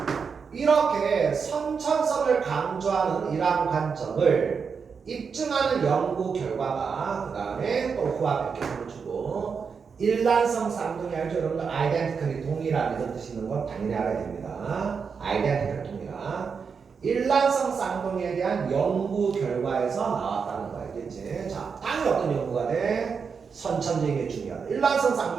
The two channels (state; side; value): quieter; left; 5.8 dB